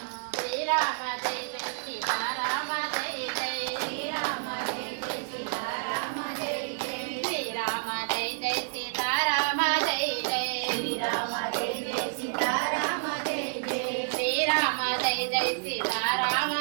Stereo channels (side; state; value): left; silent; digital silence